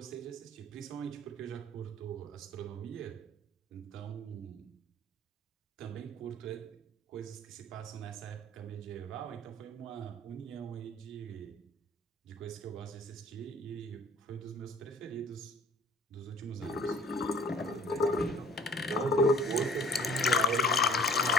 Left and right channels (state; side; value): normal; both; correlation 0.50